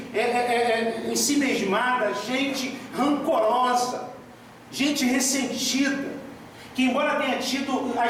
ensimesmada, gente rancorosa, gente ressentida, que embora tenha tido a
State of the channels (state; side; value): identical; both; correlation 1.00